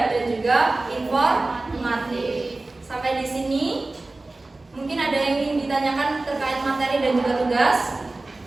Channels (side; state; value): left; quieter; 3.1 dB